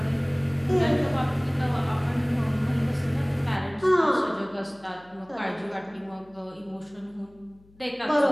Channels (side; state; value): left; noise; hum, 28 dB below the sound